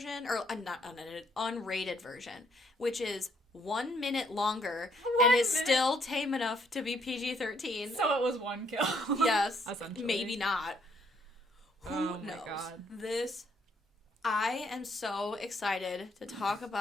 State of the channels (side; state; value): both; normal; correlation 0.69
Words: or not unedited, unrated version, which is 1 minute longer and is still tame enough to be PG-13. So it was one kill. Yes. Maybe not. Who knows? God. I am so excited to talk